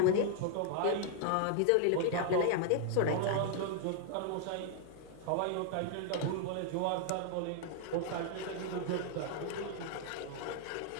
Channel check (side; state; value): both; different; correlation 0.00